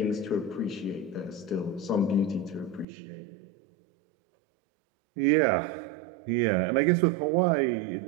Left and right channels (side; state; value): left; drops out; at 2.9 s